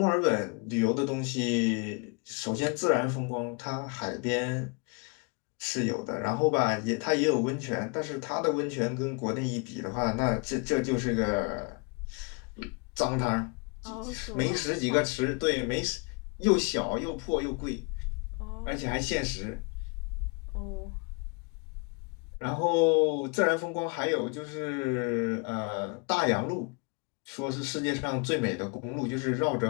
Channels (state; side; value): quieter; right; 32.8 dB